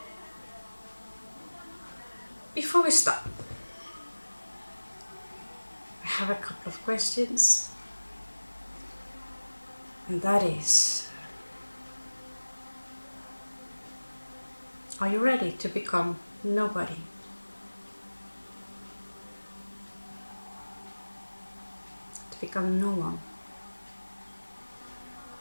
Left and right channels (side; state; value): both; inverted; correlation -1.00